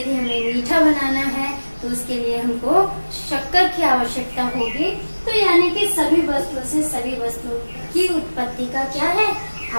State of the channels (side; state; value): both; inverted; correlation -1.00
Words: हमें मीठा बनाना है तो उसके लिए हमको शक्कर की आवश्यकता होगी। तो यानी कि सभी वस्तुओं से सभी वस्तुओं की उत्पत्ति का क्या है,